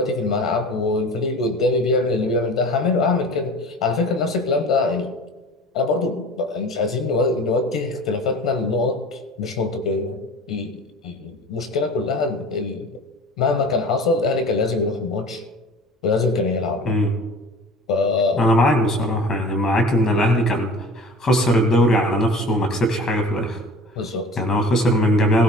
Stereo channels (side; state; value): both; normal; correlation 0.40